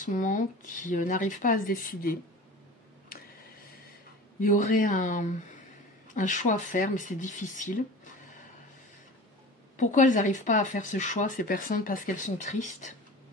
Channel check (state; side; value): normal; both; correlation 0.37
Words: moment qui n'arrivent pas à se décider. Il y aurait un choix à faire, mais c'est difficile. Pourquoi elles n'arrivent pas à faire ce choix, ces personnes? Parce qu'elles sont tristes.